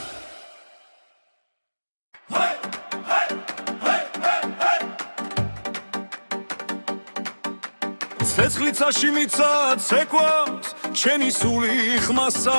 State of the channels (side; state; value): both; inverted; correlation -1.00